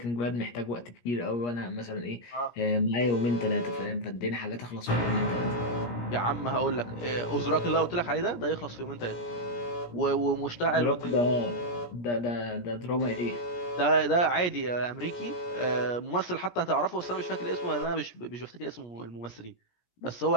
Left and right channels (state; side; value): late; right; 17 ms